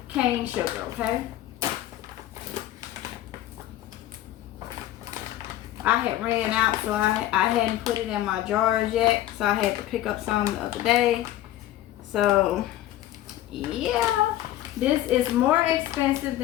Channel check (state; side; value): quieter; right; 13.9 dB